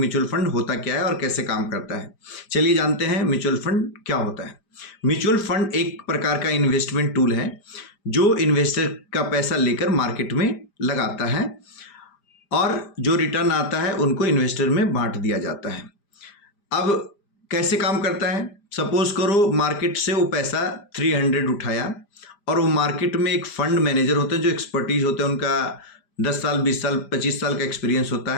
फंड होता क्या है और कैसे काम करता है। चलिए जानते हैं म्यूचुअल फंड क्या होता है। म्यूचुअल फंड एक प्रकार का इन्वेस्टमेंट टूल है जो इन्वेस्टर का पैसा लेकर मार्केट में लगाता है और जो रिटर्न आता है उनको इन्वेस्टर में बांट दिया जाता है। अब कैसे काम करता है? सपोज करो मार्केट से वो पैसा 300 उठाया और वो मार्केट में एक फंड मैनेजर होते हैं जो एक्सपर्टीज होते हैं, उनका 10 साल 20 साल 25 साल का एक्सपीरियंस होता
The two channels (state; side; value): late; right; 5.0 ms